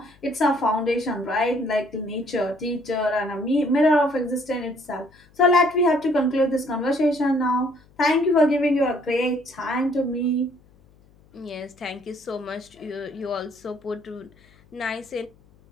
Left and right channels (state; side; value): noise; left; hum, 29 dB below the sound